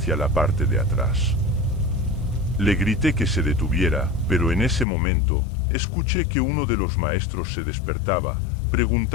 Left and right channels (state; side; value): drops out; right; at 4.9 s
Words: la parte de atrás. Le grité que se detuviera, pero en ese momento, escuché que uno de los maestros se despertaba,